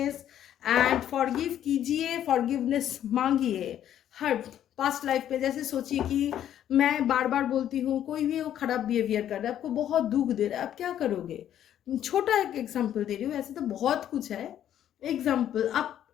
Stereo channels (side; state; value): right; quieter; 10.8 dB